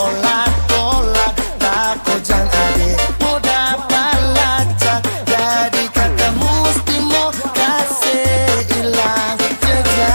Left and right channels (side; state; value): both; inverted; correlation -1.00